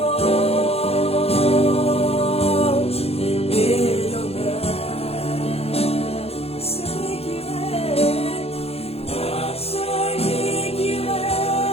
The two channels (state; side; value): late; right; 0.29 ms